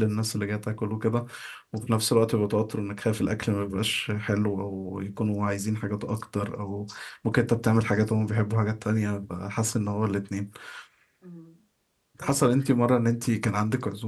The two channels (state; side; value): identical; both; correlation 1.00